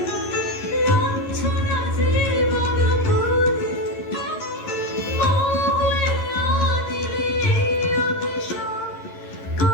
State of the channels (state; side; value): late; right; 11 ms